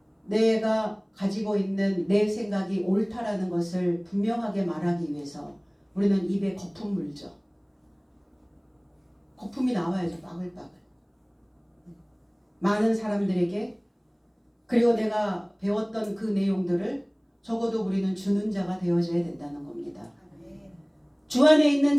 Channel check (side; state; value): both; identical; correlation 1.00